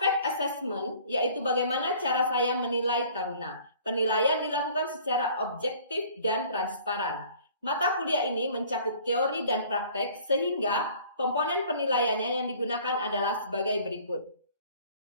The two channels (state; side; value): inverted; both; correlation -0.52